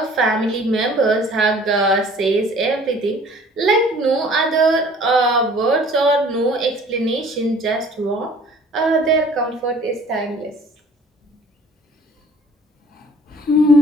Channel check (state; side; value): normal; both; correlation 0.52